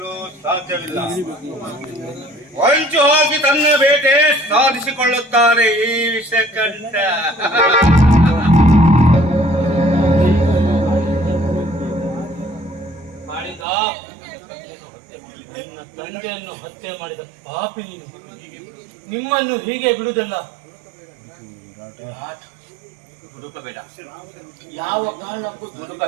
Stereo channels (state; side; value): drops out; left; at 13.7 s